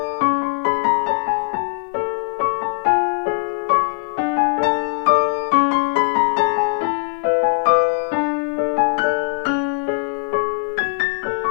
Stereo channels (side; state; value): right; silent; digital silence